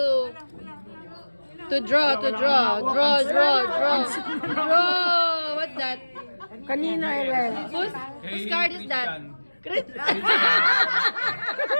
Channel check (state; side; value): inverted; both; correlation -1.00